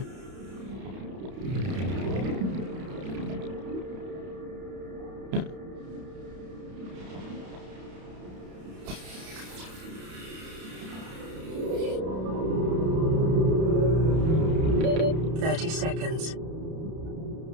Yeah. "30 seconds.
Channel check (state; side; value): late; left; 31 ms